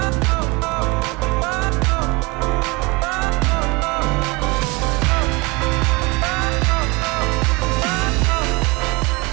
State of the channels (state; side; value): quieter; left; 26.3 dB